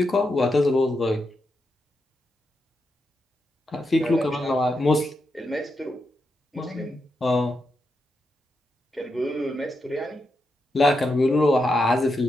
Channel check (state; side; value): normal; both; correlation 0.85